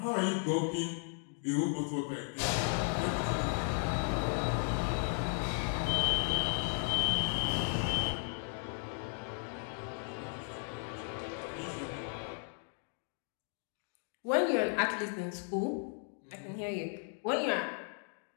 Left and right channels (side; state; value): right; silent; 54 dB below the other